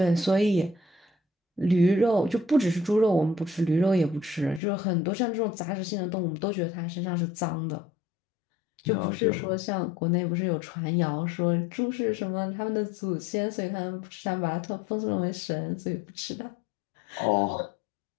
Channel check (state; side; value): drops out; right; at 4.6 s